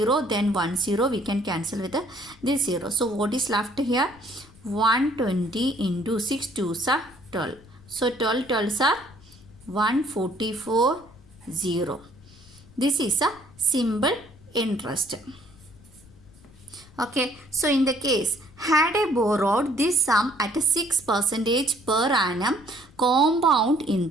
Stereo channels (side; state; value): left; noise; rumble, 24 dB below the sound